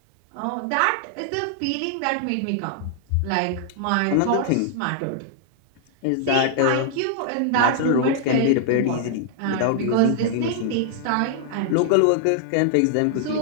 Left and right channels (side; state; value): both; different; correlation 0.00